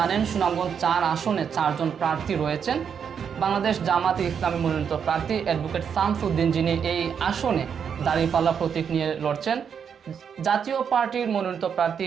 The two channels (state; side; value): quieter; left; 7.3 dB